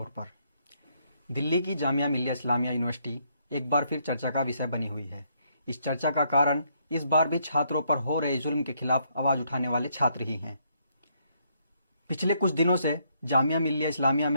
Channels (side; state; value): both; inverted; correlation -0.72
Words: पर। दिल्ली की जामिया मिल्लिया इस्लामिया यूनिवर्सिटी एक बार फिर चर्चा का विषय बनी हुई है। इस चर्चा का कारण इस बार भी छात्रों पर हो रहे जुल्म के खिलाफ आवाज उठाने वाले छात्र ही हैं। पिछले कुछ दिनों से जामिया मिल्लिया इस्लामिया